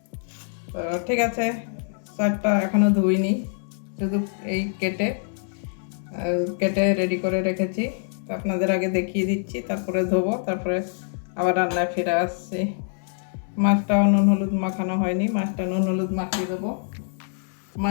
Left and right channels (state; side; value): silent; right; digital silence